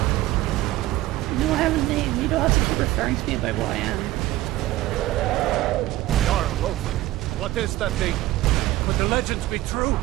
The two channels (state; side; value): quieter; left; 16.3 dB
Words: Referring to me by what I am. What is that thing? Could the legends be true?